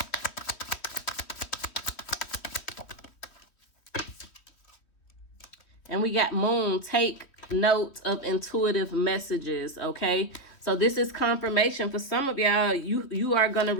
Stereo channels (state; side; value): late; right; 3.1 ms